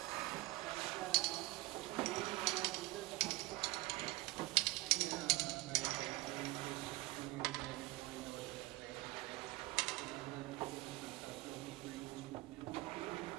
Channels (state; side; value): quieter; left; 20.9 dB